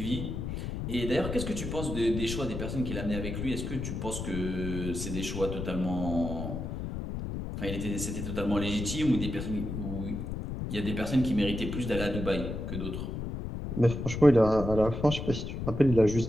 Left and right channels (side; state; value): left; noise; rumble, 5 dB below the sound